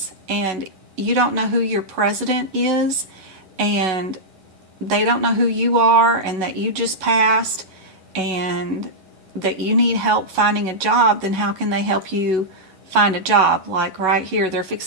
and you don't know who your president is, and they don't know who you are, and that you just passed, and that you need help finding a job, then how can they help you find a job? Like right here, they're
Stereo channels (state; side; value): late; left; 11 ms